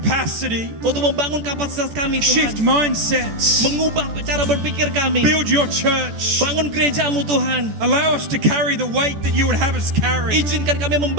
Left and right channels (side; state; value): left; late; 14 ms